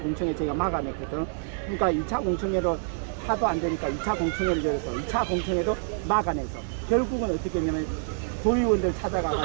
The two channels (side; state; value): left; silent; digital silence